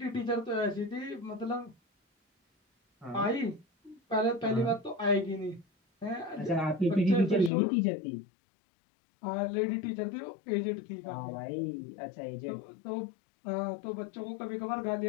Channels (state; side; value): drops out; right; at 7.5 s